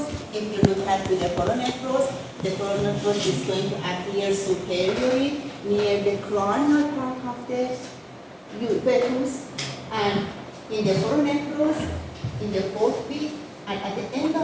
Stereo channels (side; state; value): both; identical; correlation 1.00